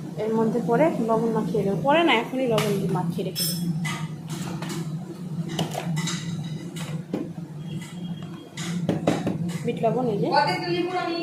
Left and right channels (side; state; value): both; identical; correlation 1.00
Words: এর মধ্যে পরে লবণ মাখিয়ে দেবো। পরে না, এখনই লবণ দিয়ে মাখিয়ে রেখে দেবো। বিট লবণ এই যে। কতে তুলি পুরো আমি